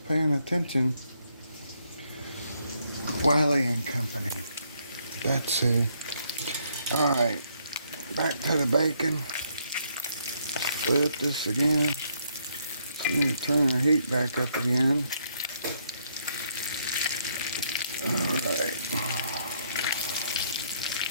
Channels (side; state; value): both; inverted; correlation -0.72